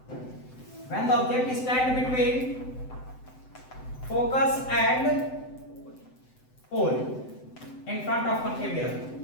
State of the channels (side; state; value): right; late; 7.9 ms